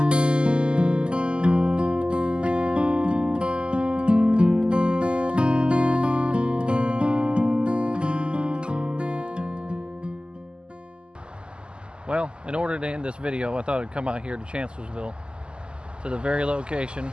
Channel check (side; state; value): left; late; 0.049 ms